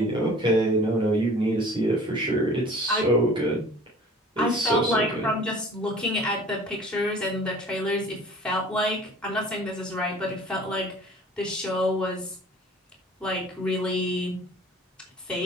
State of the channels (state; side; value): normal; both; correlation 0.47